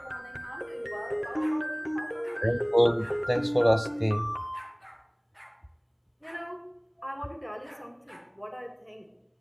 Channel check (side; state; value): both; identical; correlation 1.00